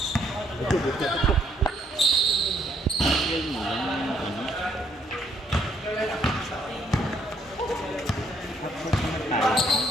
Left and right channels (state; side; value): normal; both; correlation 0.68